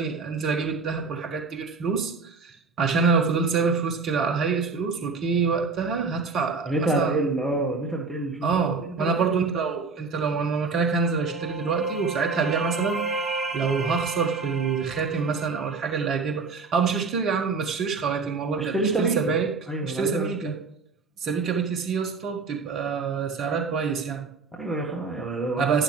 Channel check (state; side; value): quieter; left; 4.5 dB